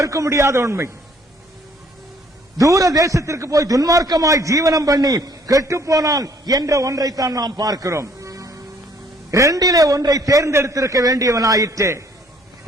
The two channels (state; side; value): normal; both; correlation 0.62